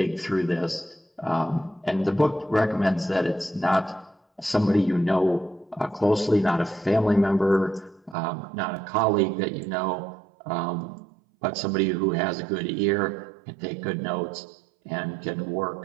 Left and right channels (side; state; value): left; drops out; at 8.2 s